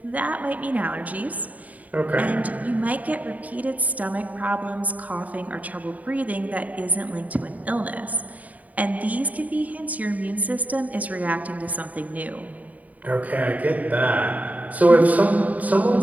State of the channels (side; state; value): left; late; 0.073 ms